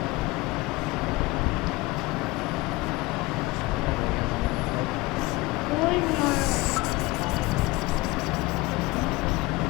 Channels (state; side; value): quieter; right; 21.9 dB